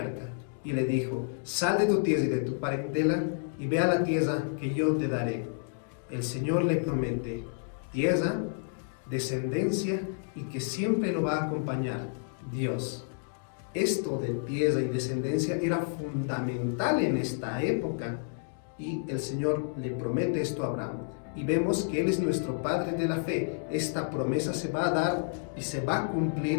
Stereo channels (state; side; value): silent; right; digital silence